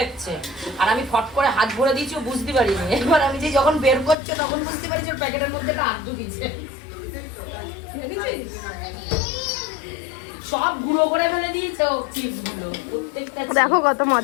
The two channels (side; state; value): right; drops out; at 4.2 s